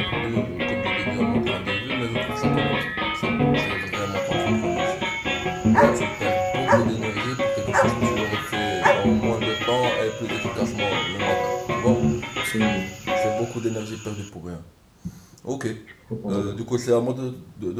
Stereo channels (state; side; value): identical; both; correlation 1.00